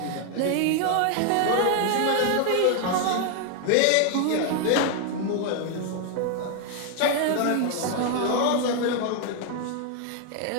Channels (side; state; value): both; different; correlation 0.00